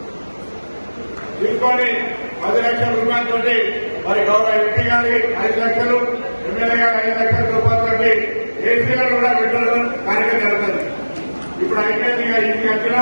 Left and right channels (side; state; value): both; inverted; correlation -1.00